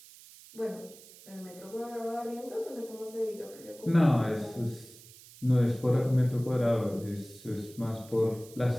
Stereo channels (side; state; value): right; noise; hiss, 20 dB below the sound